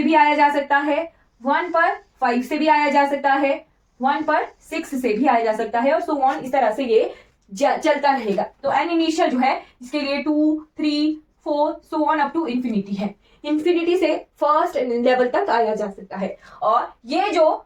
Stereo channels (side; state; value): both; identical; correlation 1.00